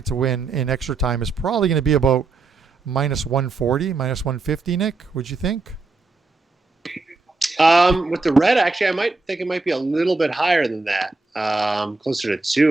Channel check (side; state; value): left; quieter; 3.8 dB